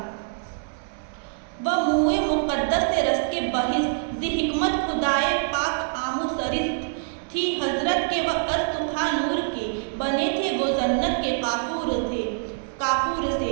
وہ منہ مقدس سے رس کے بحث، ذی حکمت خدائے پاک آمو سرست تھی حضرت کے، وہ استخا نور کے، بنے تھے وہ جنت کے کافور سے،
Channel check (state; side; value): silent; left; digital silence